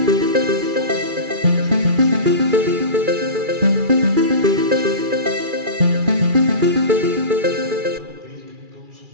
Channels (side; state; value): left; late; 2.4 ms